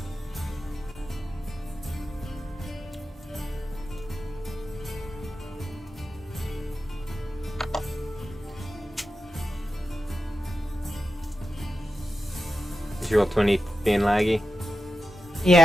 Is your roll 20 being laggy?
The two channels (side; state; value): both; normal; correlation 0.91